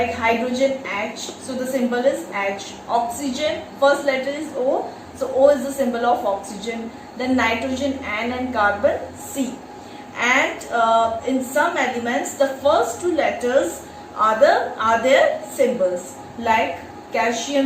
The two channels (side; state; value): both; identical; correlation 1.00